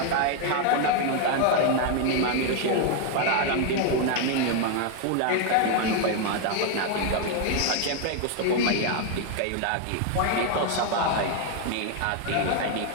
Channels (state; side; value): different; both; correlation 0.01